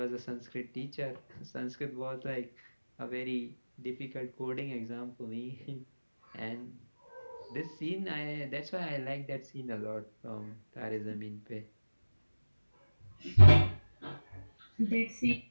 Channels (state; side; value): inverted; both; correlation -1.00